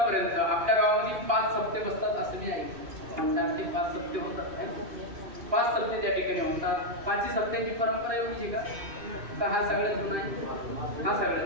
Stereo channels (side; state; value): left; late; 2.6 ms